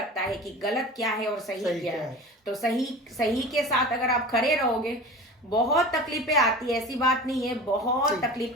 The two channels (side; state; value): both; normal; correlation 0.35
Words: है कि गलत क्या है और सही क्या है। तो सही के साथ अगर आप खड़े रहोगे, बहुत तकलीफें आती है, ऐसी बात नहीं है, बहुत